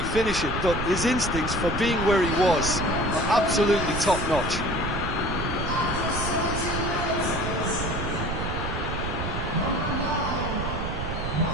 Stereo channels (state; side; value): noise; right; rumble, 4 dB below the sound